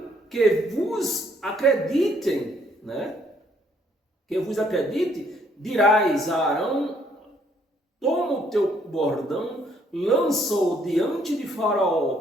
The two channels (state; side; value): normal; both; correlation 0.67